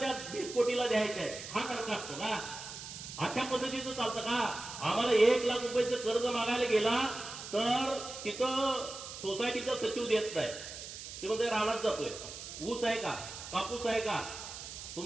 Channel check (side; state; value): right; noise; hiss, 10 dB below the sound